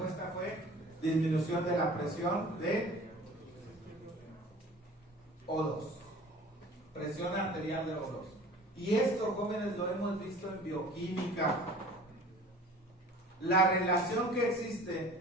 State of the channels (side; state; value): both; normal; correlation 0.45